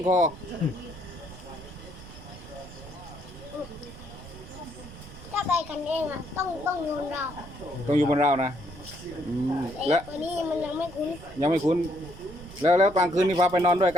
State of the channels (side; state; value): right; noise; rumble, 16 dB below the sound